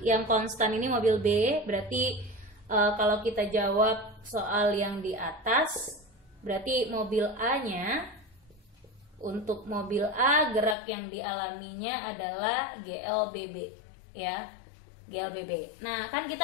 yang konstan ini mobil B. Berarti kalau kita jawab soal yang di atas, berarti mobil A-nya, untuk mobil A gerak yang dialaminya adalah GLBB, ya, GLBB. Nah, kan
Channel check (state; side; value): drops out; right; at 10.8 s